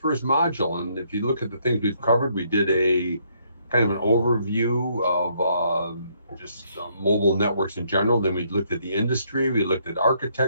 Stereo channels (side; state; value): both; inverted; correlation -0.71